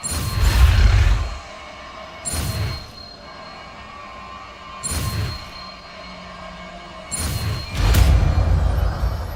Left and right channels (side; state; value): both; identical; correlation 1.00